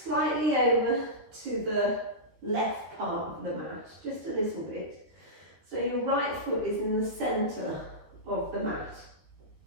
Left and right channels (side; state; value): left; late; 13 ms